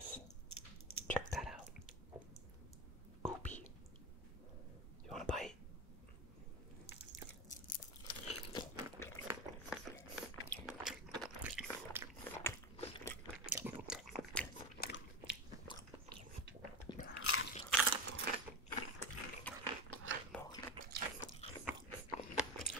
Check that out. Goopy. You want a bite?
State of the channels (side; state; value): both; normal; correlation 0.21